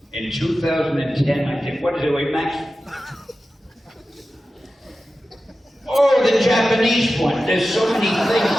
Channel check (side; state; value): both; normal; correlation 0.93